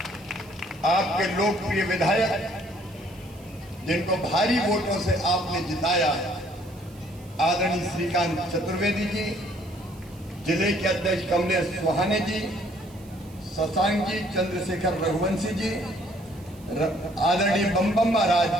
आपके लोकप्रिय विधायक जिनको भारी वोटों से आपने जिताया, आदरणीय श्रीकांत चतुर्वेदी जी, जिले के अध्यक्ष कमलेश सुहाने जी, शशांक जी, चंद्रशेखर रघुवंशी जी, आदरणीय बम बम महाराज,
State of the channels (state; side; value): noise; right; hiss, 25 dB below the sound